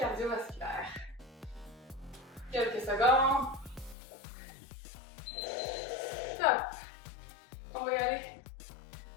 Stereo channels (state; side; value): drops out; right; at 4.0 s